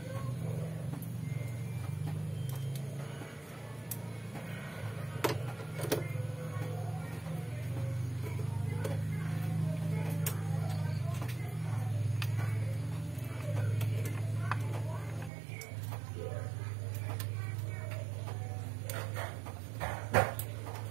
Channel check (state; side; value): drops out; left; at 15.3 s